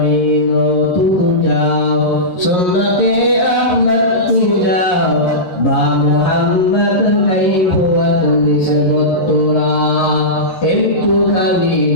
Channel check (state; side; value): late; right; 11 ms